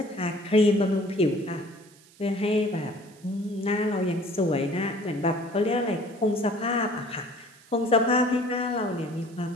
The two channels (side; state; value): right; noise; hiss, 27 dB below the sound